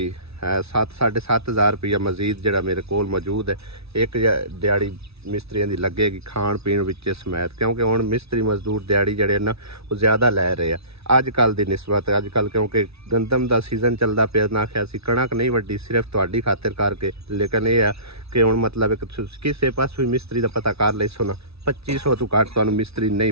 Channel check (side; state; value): left; late; 0.79 ms